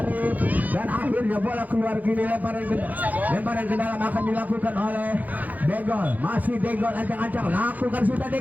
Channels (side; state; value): left; late; 0.081 ms